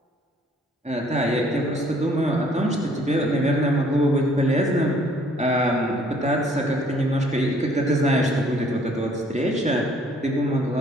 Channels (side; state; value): both; normal; correlation 0.60